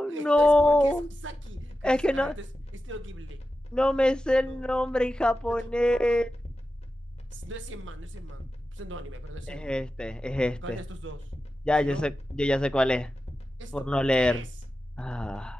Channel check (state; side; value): normal; both; correlation 0.92